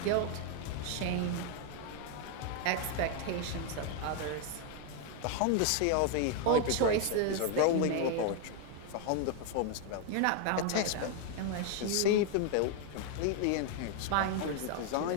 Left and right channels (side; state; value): both; different; correlation 0.01